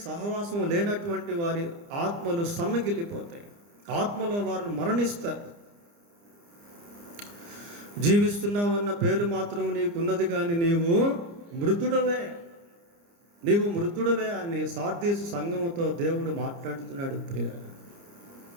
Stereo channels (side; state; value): left; late; 29 ms